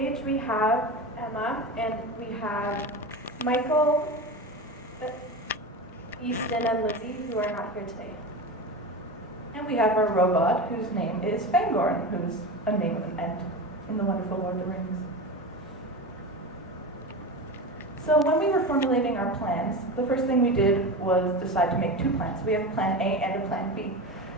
we have Emma, and we have Michael, Easton, and Lizzie, who are not here today. And we have our robot, whose name is Fangorn, who's a name of an Ent in the wonderful Lord of the Rings. So when we were formulating our plans, the first thing we did was decide to make two plans. We have a plan A and a plan B.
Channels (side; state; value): both; normal; correlation 0.25